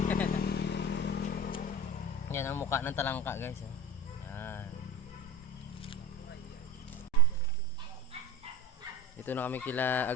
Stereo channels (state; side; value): normal; both; correlation 0.30